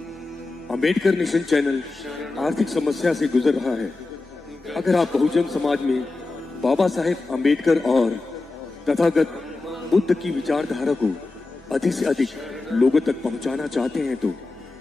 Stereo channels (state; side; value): quieter; right; 3.4 dB